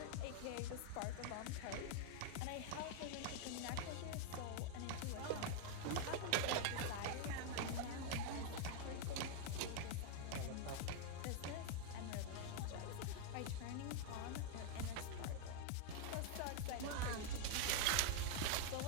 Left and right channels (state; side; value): different; both; correlation 0.00